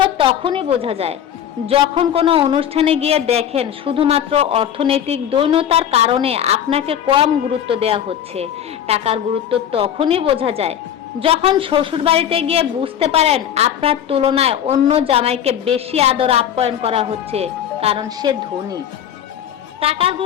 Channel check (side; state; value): right; quieter; 9.7 dB